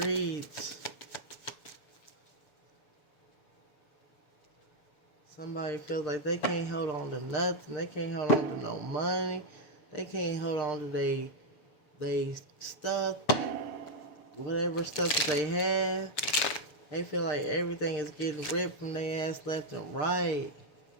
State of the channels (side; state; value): right; late; 6.7 ms